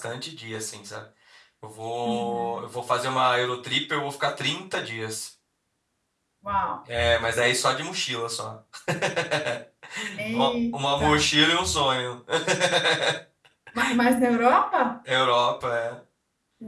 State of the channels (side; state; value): both; identical; correlation 1.00